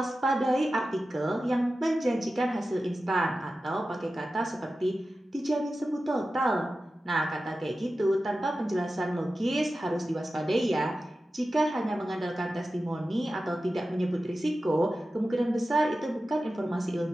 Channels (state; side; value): normal; both; correlation 0.94